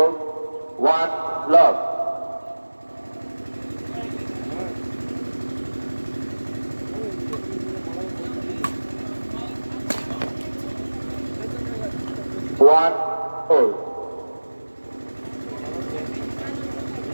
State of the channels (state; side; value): inverted; both; correlation -1.00